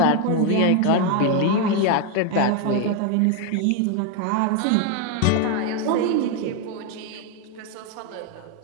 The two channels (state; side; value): different; both; correlation 0.01